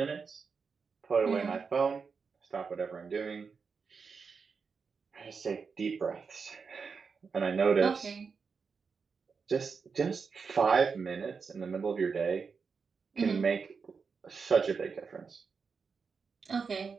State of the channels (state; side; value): quieter; left; 5.4 dB